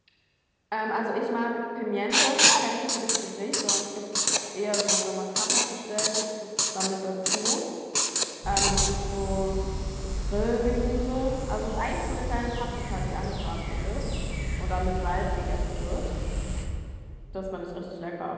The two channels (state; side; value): identical; both; correlation 1.00